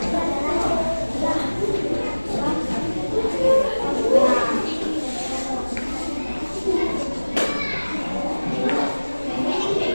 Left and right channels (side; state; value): both; inverted; correlation -1.00